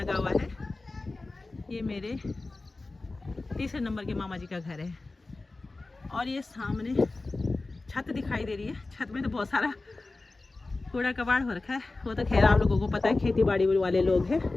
हुआ है। ये मेरे 3 नंबर के मामा जी का घर है। और ये सामने छत दिखाई दे रही है। छत में तो बहुत सारा कूड़ा कबाड़ हो रखा है। वो तो खैर आप लोगों को पता है, खेती बाड़ी वाले लोग हैं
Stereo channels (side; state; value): right; quieter; 3.3 dB